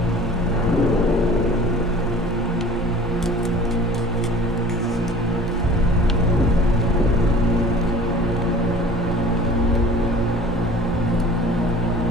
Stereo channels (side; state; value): both; normal; correlation 0.45